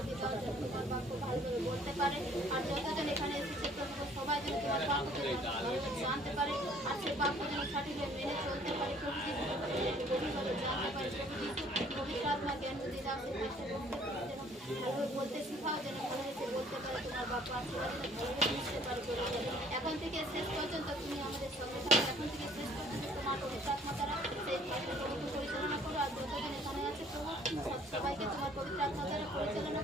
এখন থেকে শেষ পর্যন্ত তুমি আমাদের সঙ্গে থাকো। এখন থেকে শেষ পর্যন্ত তোমার পবিত্র আত্মা দ্বারা সেই কাজগুলোকে পরিচালনা করো। আর যতজন এখানে আছে প্রভু, সবাইকে তোমার পবিত্র আত্মা দ্বারা পরিচালনা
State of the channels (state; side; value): normal; both; correlation 0.58